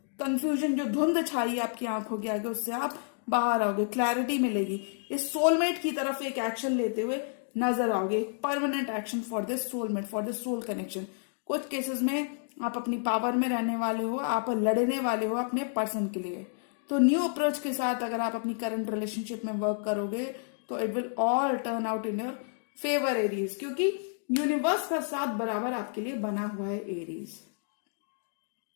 कंफ्यूजन, जो धुंध छाई आपकी आंखों के आगे, उससे आप बाहर आओगे, क्लैरिटी मिलेगी। इस सोलमेट की तरफ एक एक्शन लेते हुए नजर आओगे, permanent action for this soulmate, for this soul connection. कुछ केसेस में आप अपनी पावर में रहने वाले हो, आप लड़ने वाले हो अपने पर्सन के लिए। तो न्यू अप्रोच के साथ अगर आप अपनी करंट रिलेशनशिप में वर्क करोगे तो it will all turn out in your favour Aries, क्योंकि यूनिवर्स का साथ बराबर आपके लिए बना हुआ है एरीज।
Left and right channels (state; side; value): silent; right; digital silence